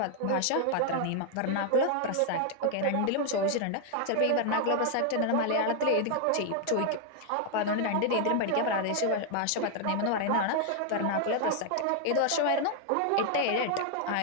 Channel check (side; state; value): both; different; correlation 0.00